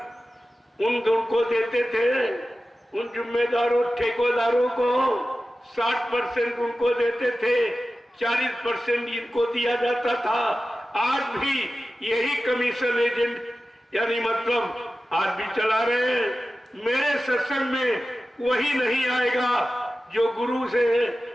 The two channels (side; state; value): both; normal; correlation 0.94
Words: उनको देते थे, उन जिम्मेदारों ठेकेदारों को 60% उनको देते थे, 40% इनको दिया जाता था। आज भी यही कमीशन एजेंट यानी मतलब आज भी चला रहे हैं। मेरे सत्संग में वही नहीं आएगा जो गुरु से